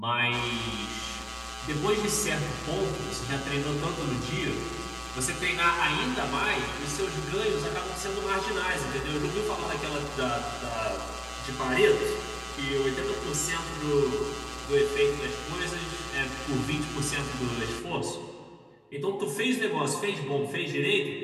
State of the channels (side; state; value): both; identical; correlation 1.00